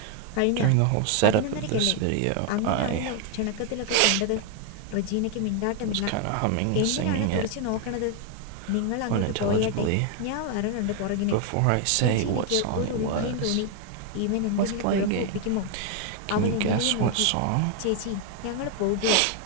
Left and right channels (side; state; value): both; different; correlation 0.01